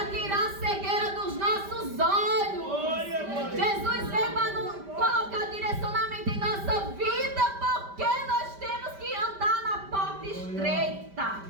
tirar a cegueira dos nossos olhos. Glória, glória. Jesus veio para colocar direcionamento em nossa vida, porque nós temos que andar na porta estreita.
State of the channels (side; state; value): left; late; 5.1 ms